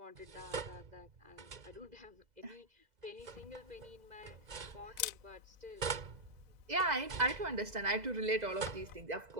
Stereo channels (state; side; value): late; left; 2.0 ms